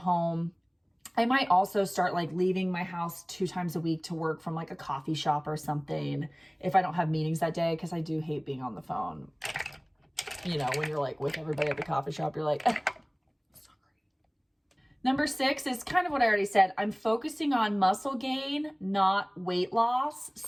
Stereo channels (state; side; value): identical; both; correlation 1.00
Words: I might also start like leaving my house 2 times a week to work from like a coffee shop or something if I don't have meetings that day, because I do hate being on the phone. You know, when you're like with everybody at the coffee shop, you're like, Number 6 is kind of what I already said. I'm focusing on muscle gain, not weight loss.